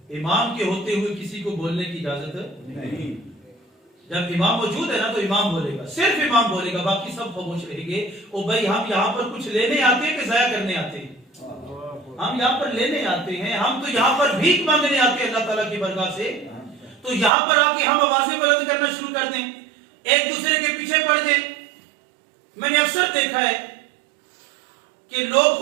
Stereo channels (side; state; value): left; drops out; at 17.3 s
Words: امام کے ہوتے ہوئے کسی کو بولنے کی اجازت نہیں۔ جب امام موجود ہے نا تو امام بولے گا، صرف امام بولے گا، باقی سب خاموش رہیں گے۔ او بھائی ہم یہاں پر کچھ لینے آتے ہیں کہ ضائع کرنے آتے ہیں؟ ہم یہاں پر لینے آتے ہیں، ہم تو یہاں پر بھیک مانگنے آتے ہیں اللہ تعالیٰ کی برگاہ سے۔ تو یہاں پر آ کے ہم آوازیں بلند کرنا شروع کر دیں، ایک دوسرے کے پیچھے پڑ دیں۔ میں نے اکثر دیکھا ہے کہ لوگ